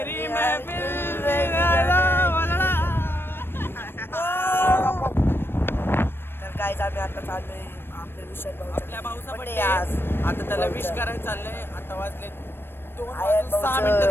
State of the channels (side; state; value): right; late; 0.10 ms